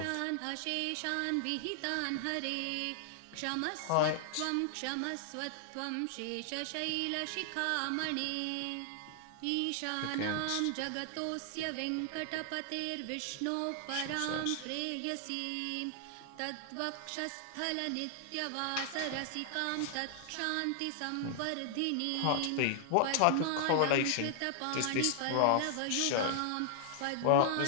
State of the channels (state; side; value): different; both; correlation 0.00